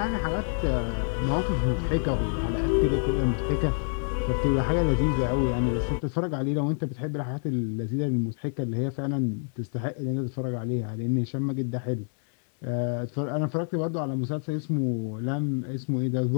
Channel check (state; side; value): silent; right; digital silence